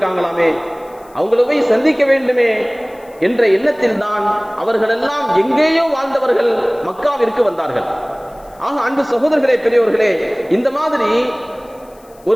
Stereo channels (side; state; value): left; noise; hiss, 29 dB below the sound